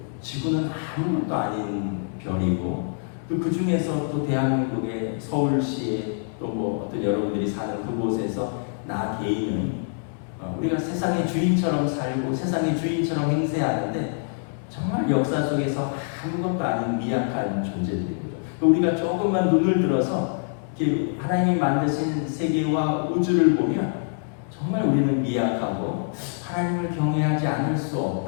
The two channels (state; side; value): silent; right; 62 dB below the other